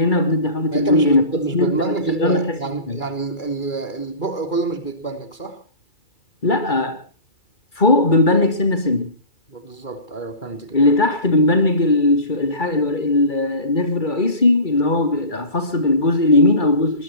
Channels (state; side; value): late; right; 2.3 ms